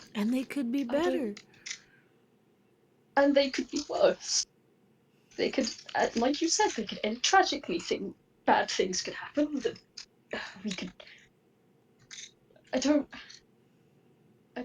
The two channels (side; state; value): both; identical; correlation 1.00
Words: And they could be better. And they could be worse. They could, like you said, they could end tragically. Bad things could happen. That we could. I don't.